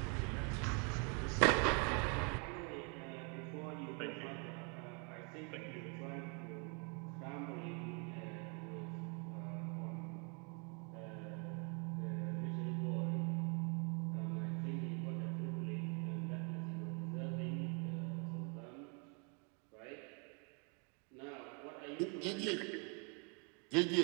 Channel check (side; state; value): left; quieter; 35.9 dB